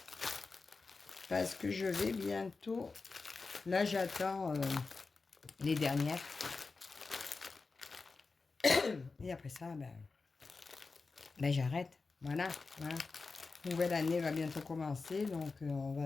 Parce que je vais bientôt... Là, j'attends les dernières. Et après ça, ben j'arrête. Voilà, voilà. Nouvelle année va bientôt commencer, donc on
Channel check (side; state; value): right; quieter; 4.2 dB